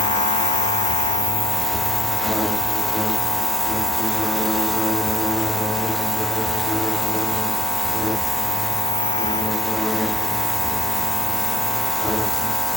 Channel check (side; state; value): both; normal; correlation 0.56